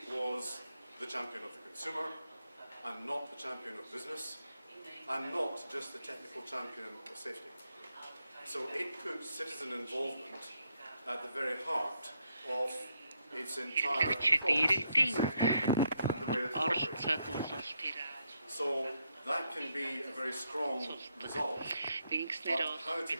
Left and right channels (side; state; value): both; inverted; correlation -0.78